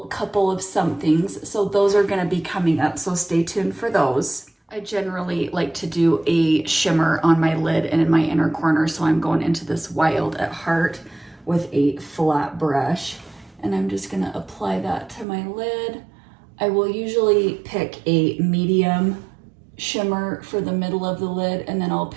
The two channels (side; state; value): left; drops out; at 15.2 s